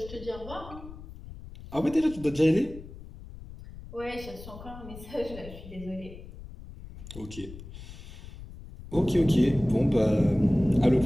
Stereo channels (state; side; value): noise; left; rumble, 15 dB below the sound